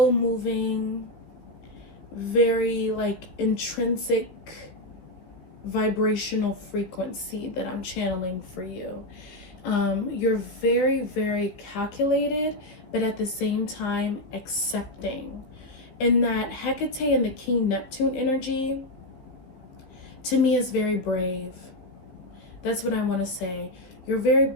moving, very like intrinsic vibrational frequency that I'm channeling for you. You're very, very calculated, but at the same time accepting. And that Hecate and the King Neptune energy, to me, is very brave. That's what I want to say. You're very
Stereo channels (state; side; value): late; right; 15 ms